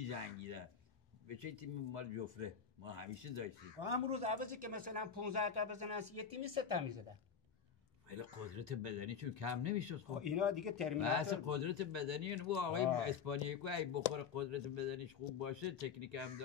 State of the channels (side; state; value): right; quieter; 6.8 dB